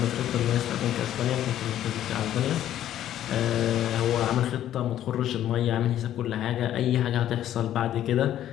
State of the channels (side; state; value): right; quieter; 11.8 dB